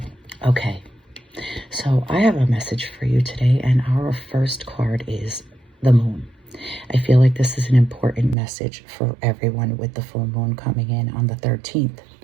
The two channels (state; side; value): drops out; left; at 8.3 s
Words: Okay, so I have a message for you today, and our first card is the moon. I feel like this is an important message for everyone with the full moon coming in on the 13th,